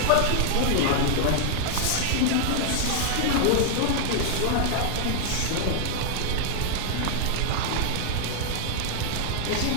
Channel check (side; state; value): both; different; correlation -0.01